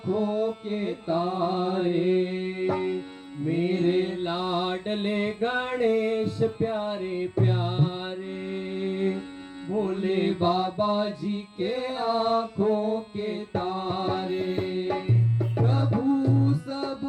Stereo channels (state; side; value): identical; both; correlation 1.00